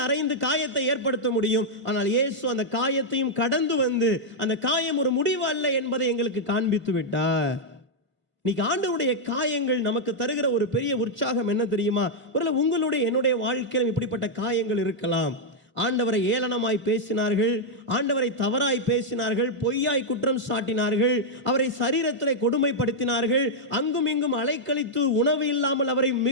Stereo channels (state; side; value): late; left; 1.5 ms